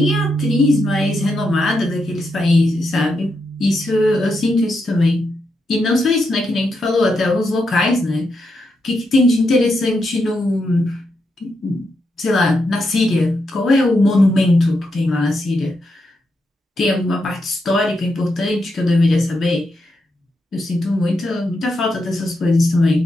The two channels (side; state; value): both; normal; correlation 0.83